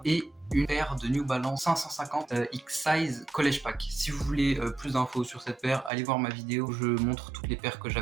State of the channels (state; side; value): drops out; left; at 5.9 s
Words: et une paire de New Balance 550 X-Size College Pack. Si vous voulez plus d'infos sur cette paire, allez voir ma vidéo où je montre toutes les paires que